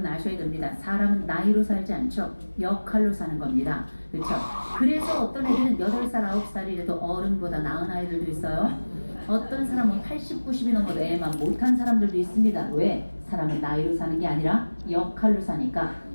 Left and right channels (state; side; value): inverted; both; correlation -1.00